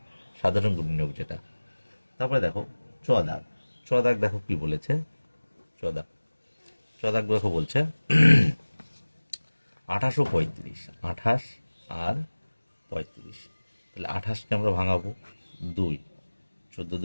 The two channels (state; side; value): inverted; both; correlation -1.00